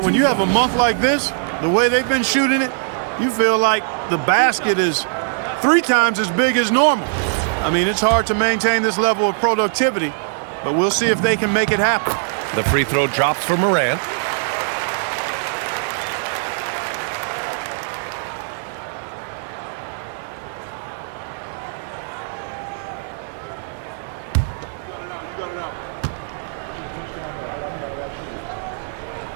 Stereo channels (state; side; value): silent; left; 65 dB below the other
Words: when you have a month like this, the way they've been shooting it, you feel like the basket is 3 times as big as normal. I mean, it's hard to maintain this level of productivity, but we'll see if they can make it happen. The free throw drops for Morant.